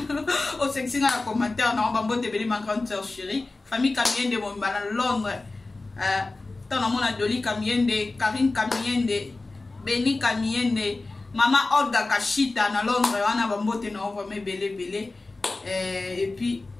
au sexy na commentaire na bambote beli ma grande sœur chérie famille Kamiende mon bana Londres tant na mona Doli Kamiende Karine Kamiende Beni Kamiende maman Olga Kashita na Londres wana bambote na ko belé et puis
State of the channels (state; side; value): quieter; right; 3.3 dB